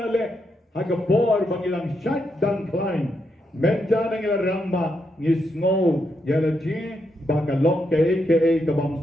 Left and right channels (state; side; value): normal; both; correlation 0.81